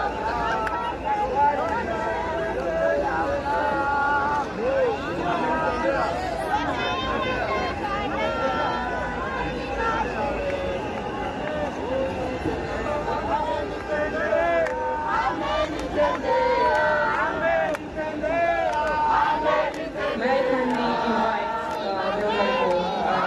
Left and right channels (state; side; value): identical; both; correlation 1.00